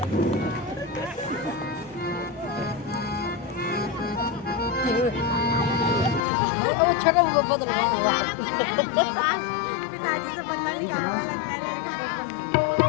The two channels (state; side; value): drops out; right; at 6.2 s